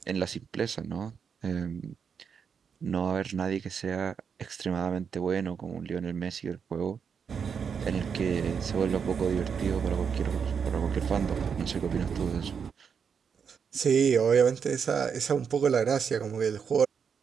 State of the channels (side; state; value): left; quieter; 6.7 dB